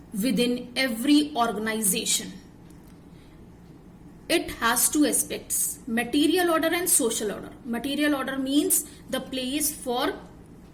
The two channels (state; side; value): identical; both; correlation 1.00